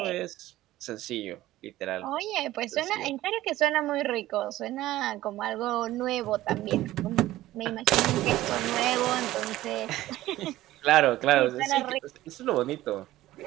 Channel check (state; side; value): quieter; left; 15.6 dB